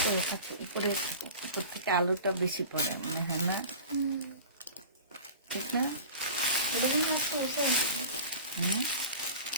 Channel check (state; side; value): inverted; both; correlation -0.39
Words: থাকে, উপরে উপর থেকে আলোটা বেশি পড়ে মনে হয় না? ঠিক না?